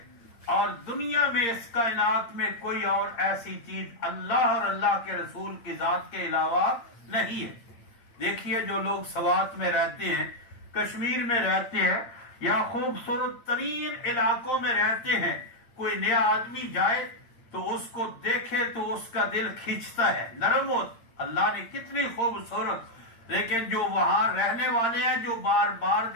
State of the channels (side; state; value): right; late; 8.7 ms